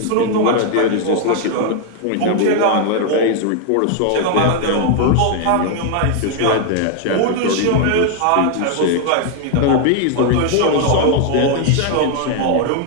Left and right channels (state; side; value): different; both; correlation 0.00